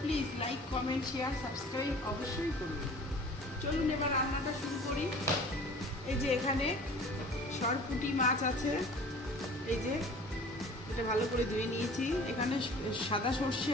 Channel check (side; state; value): both; normal; correlation 0.45